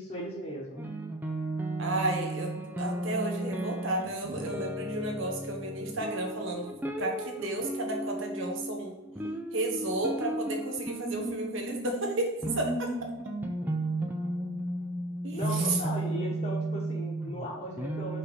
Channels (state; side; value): normal; both; correlation 0.35